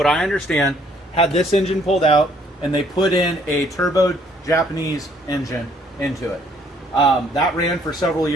I understand, had this engine pulled out and they put in a turbo Japanese engine into it. That ran for several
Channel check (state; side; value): normal; both; correlation 0.63